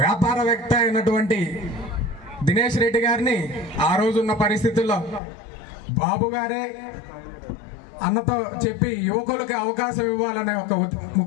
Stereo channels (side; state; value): right; drops out; at 5.2 s